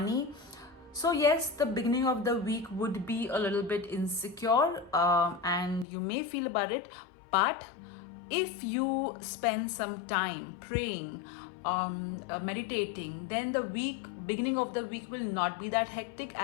So yes, the beginning of the week would be a little bit insecure and you may feel about it, but if you spend some time praying, meditating, then the beginning of the week will not be that hectic,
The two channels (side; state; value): right; drops out; at 5.9 s